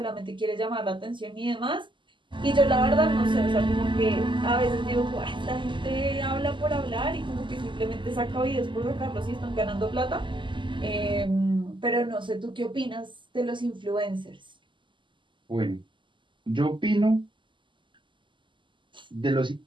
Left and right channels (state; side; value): late; left; 0.24 ms